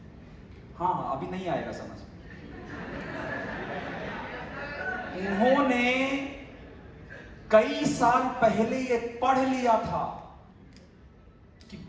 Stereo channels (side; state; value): both; identical; correlation 1.00